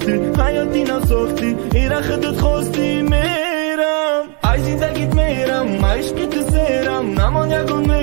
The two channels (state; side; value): quieter; left; 36.4 dB